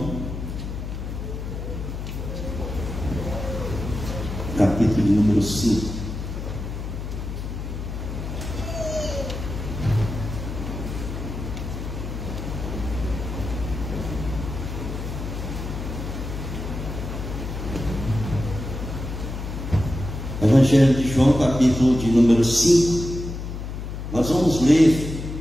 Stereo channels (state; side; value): noise; left; hum, 6 dB below the sound